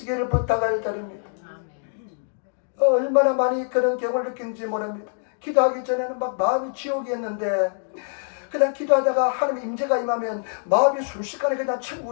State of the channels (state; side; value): silent; right; digital silence